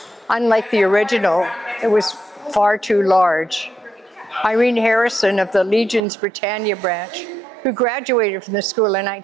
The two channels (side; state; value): left; drops out; at 6.0 s